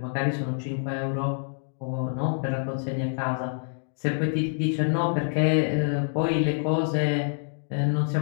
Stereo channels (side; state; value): right; silent; digital silence